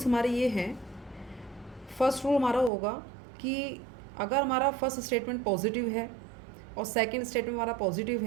हमारे ये हैं। फर्स्ट रूल हमारा होगा कि अगर हमारा फर्स्ट स्टेटमेंट पॉजिटिव है और सेकंड स्टेटमेंट हमारा पॉजिटिव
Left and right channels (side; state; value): left; drops out; at 2.7 s